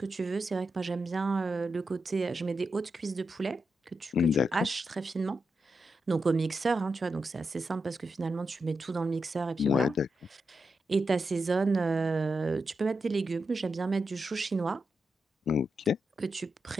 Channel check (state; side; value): normal; both; correlation 0.86